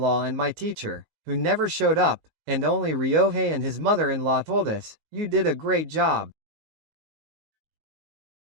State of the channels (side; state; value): left; late; 19 ms